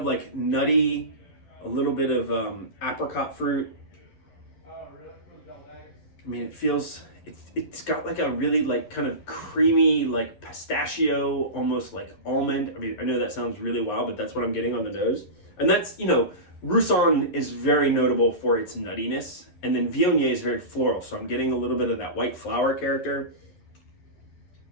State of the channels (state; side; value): late; right; 11 ms